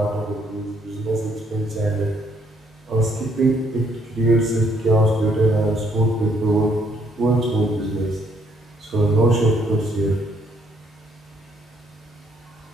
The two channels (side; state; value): both; normal; correlation 0.69